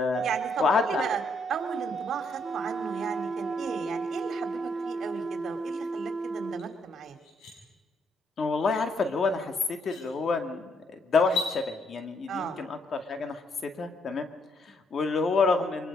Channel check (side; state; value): both; normal; correlation 0.73